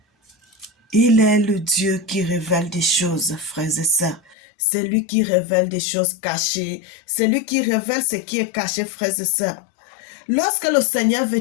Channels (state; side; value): drops out; right; at 4.4 s